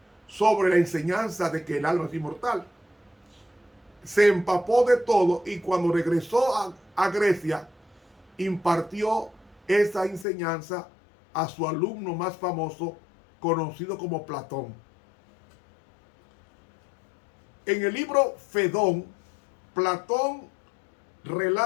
sobre la enseñanza de que el alma es inmortal. Se empapó de todo y cuando regresó a Grecia, impartió esa enseñanza a su alumno más famoso, conocido como Platón. En el libro Fedón, Platón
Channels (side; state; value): right; drops out; at 10.2 s